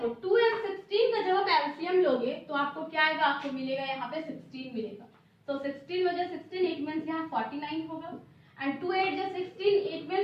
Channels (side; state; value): both; identical; correlation 1.00